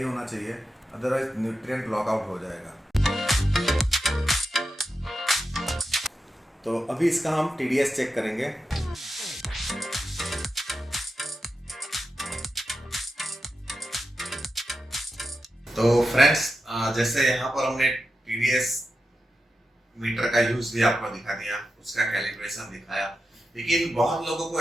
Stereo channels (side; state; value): both; normal; correlation 0.89